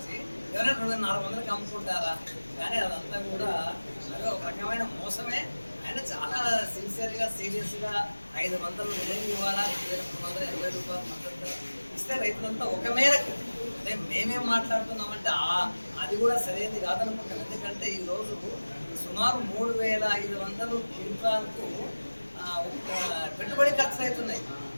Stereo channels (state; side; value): inverted; both; correlation -1.00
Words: ఎవరైనా 2400 అమ్ముకుంటారా? కానీ అదంతా కూడా అదే ఒక రకమైన మోసమే. ఆయన చాలా సిన్సియర్గా సీరియస్గా 500 విధంగా ఇవ్వాలా, 2380 రూపాయలు మద్దతు ఇస్తే రైతులంతా ఒక మేరకు. అంటే మేమేం మాట్లాడుతున్నామంటే అది కూడా సరైనది కాదనుకుంటాం. ఎందుకంటే ఈరోజు సుమారు 3500 క్వింటాలకు పెట్టుబడి ఖర్చులు అవుతున్నాయి.